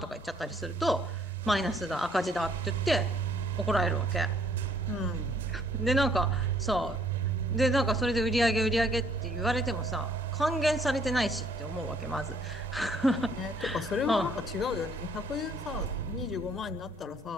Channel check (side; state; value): both; normal; correlation 0.62